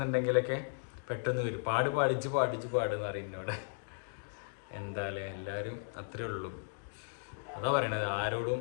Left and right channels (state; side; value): silent; right; digital silence